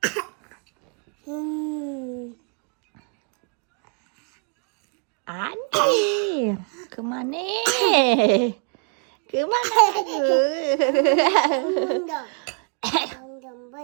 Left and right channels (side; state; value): left; quieter; 38.5 dB